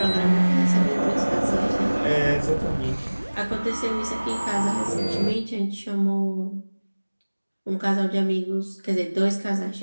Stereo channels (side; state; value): both; inverted; correlation -1.00